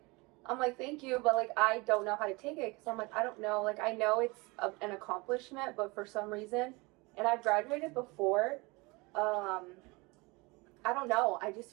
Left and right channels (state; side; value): quieter; left; 25.5 dB